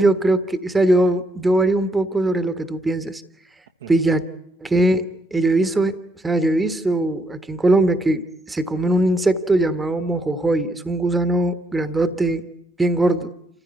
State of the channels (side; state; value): both; normal; correlation 0.74